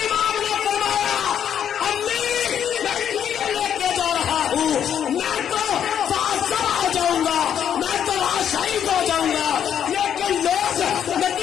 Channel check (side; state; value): right; quieter; 9.0 dB